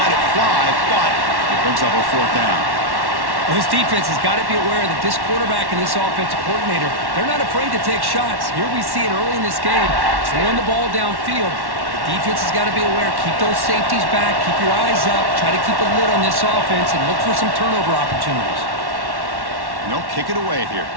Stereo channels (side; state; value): left; late; 1.1 ms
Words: it fly, but it brings up a 4th down. Well, this defense has got to be aware that this quarterback and this offensive coordinator, they're not afraid to take shots. Here we see it early in this game, throwing the ball downfield. The defense has got to be aware. Keep those safeties back. Keep your eyes up. Try to keep a lid on this offense and look for some turnover opportunities. No, kick it away here.